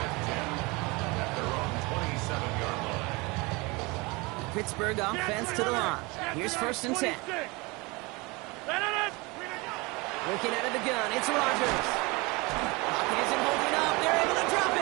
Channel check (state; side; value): quieter; left; 25.5 dB